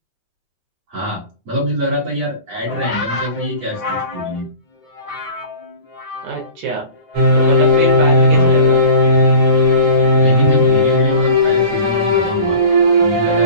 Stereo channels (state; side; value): late; left; 9.6 ms